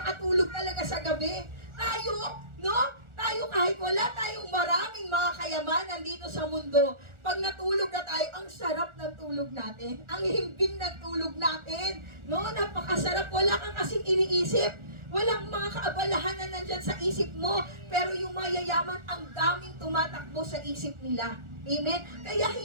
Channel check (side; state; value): left; late; 1.4 ms